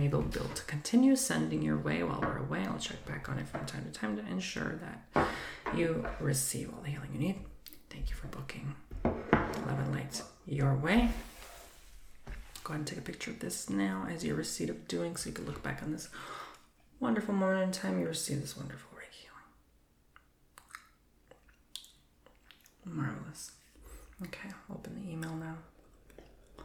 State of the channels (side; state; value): both; identical; correlation 1.00